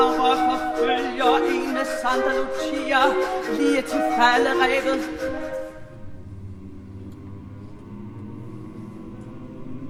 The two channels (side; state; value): both; identical; correlation 1.00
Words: forfølger en med Santa Lucia lige til falderevet.